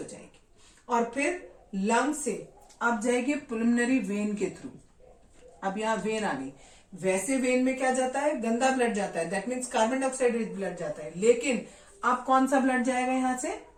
जाएगी, और फिर लंग से अब जाएगी पुल्मोनरी वेन के थ्रू। अब यहाँ वेन आ गई, वैसे वेन में क्या जाता है, गंदा ब्लड जाता है, that means carbon dioxide rich blood जाता है। लेकिन अब कौन सा ब्लड जाएगा, यहां से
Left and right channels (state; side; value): identical; both; correlation 1.00